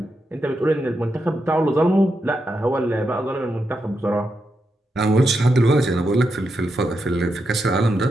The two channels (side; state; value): both; normal; correlation 0.85